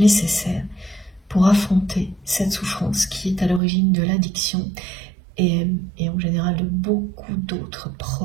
pour affronter cette souffrance qui est à l'origine de l'addiction et en général de beaucoup d'autres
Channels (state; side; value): drops out; left; at 3.6 s